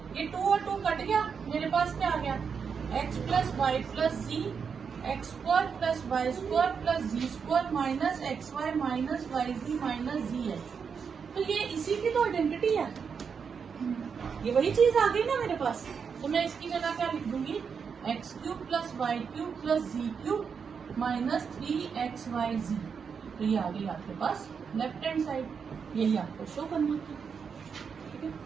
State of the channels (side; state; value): left; quieter; 6.3 dB